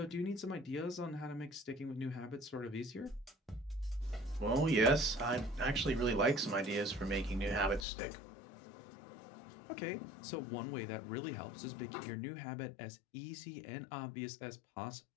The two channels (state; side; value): drops out; right; at 7.9 s